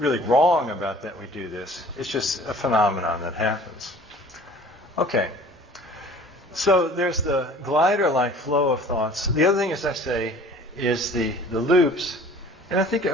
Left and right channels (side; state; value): both; normal; correlation 0.48